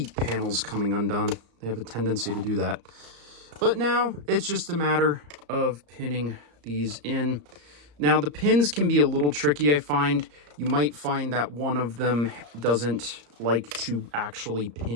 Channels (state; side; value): late; left; 34 ms